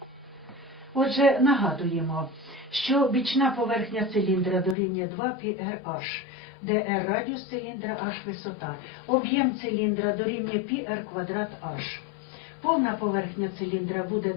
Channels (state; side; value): drops out; right; at 4.8 s